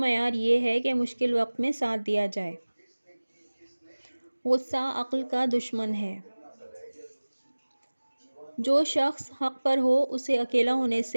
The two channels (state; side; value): inverted; both; correlation -1.00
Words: یہ ہے کہ مشکل وقت میں ساتھ دیا جائے۔ غصہ عقل کا دشمن ہے۔ جو شخص حق پر ہو اسے اکیلا ہونے